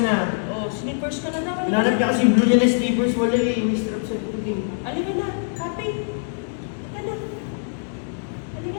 Oh, slippers ka na naman. Hinanap niya kasi yung blue niya na sleepers. Wala eh. May strap sa likod eh. Halika na, Happy. Halika na. Halika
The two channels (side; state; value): right; silent; digital silence